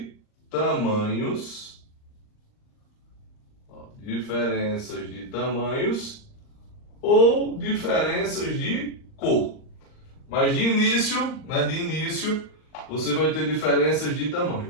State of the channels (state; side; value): late; right; 39 ms